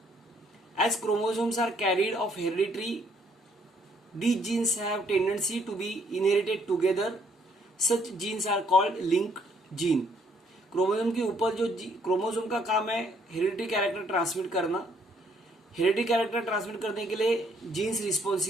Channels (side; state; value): both; normal; correlation 0.67